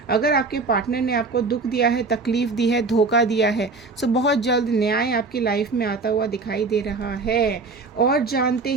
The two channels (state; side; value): quieter; left; 4.0 dB